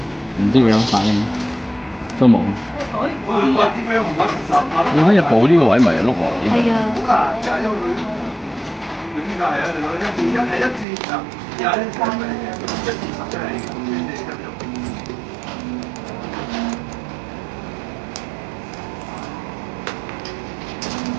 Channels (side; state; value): left; drops out; at 10.9 s